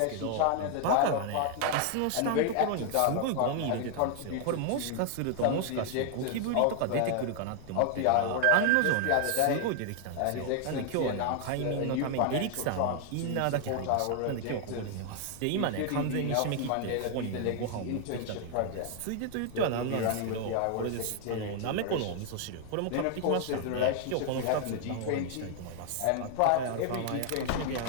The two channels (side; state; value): both; different; correlation 0.00